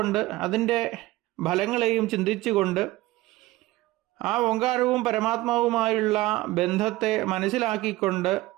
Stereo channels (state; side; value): quieter; left; 18.3 dB